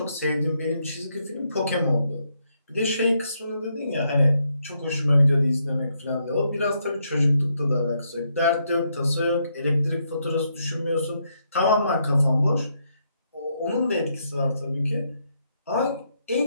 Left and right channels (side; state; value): both; inverted; correlation -0.77